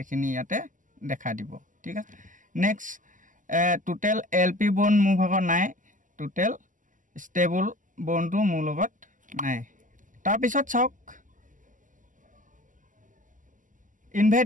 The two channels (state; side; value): late; left; 0.38 ms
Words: ইয়াতে দেখা দিব ঠিক আছে নেক্সট টোটেল এলপি বন মোৰ ভাগৰ নাই টোটেল ষ্টেবল বনটো মোৰ লগত নাই তাৰ পিছত চাওক